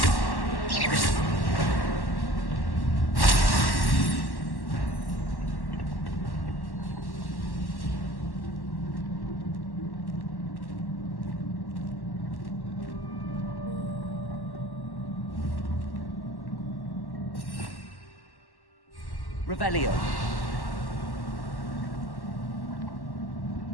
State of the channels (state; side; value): late; right; 1.1 ms